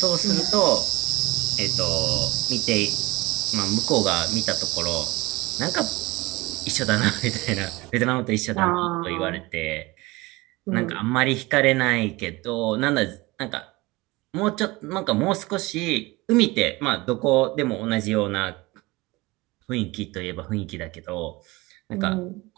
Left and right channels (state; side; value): quieter; left; 22.0 dB